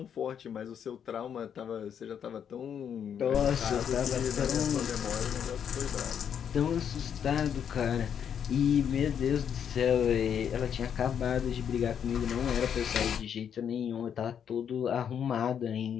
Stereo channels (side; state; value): right; quieter; 8.3 dB